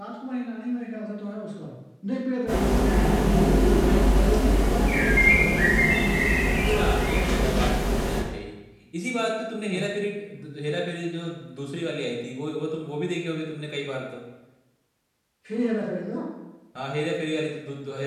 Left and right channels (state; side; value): identical; both; correlation 1.00